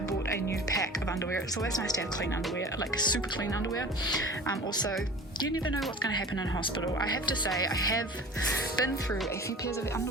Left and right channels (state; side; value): normal; both; correlation 0.40